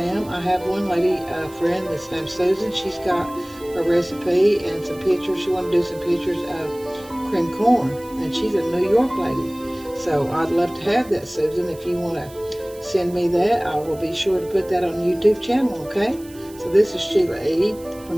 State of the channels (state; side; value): noise; right; hiss, 22 dB below the sound